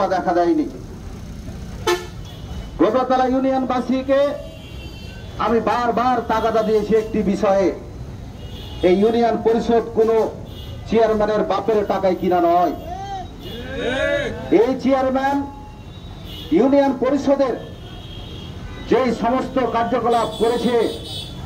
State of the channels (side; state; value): both; identical; correlation 1.00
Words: দেখা দেয়নি। গোবরাতলা ইউনিয়নবাসীকে আমি বারবার তাগাদা দিয়েছি একটি বিষয়ে, এই ইউনিয়ন পরিষদ কোনো চেয়ারম্যানের বাপের টাকায় কিনা নয়। এই চেয়ারম্যান ইউনিয়ন পরিষদের যেই সমস্ত কার্যকলাপ করেছে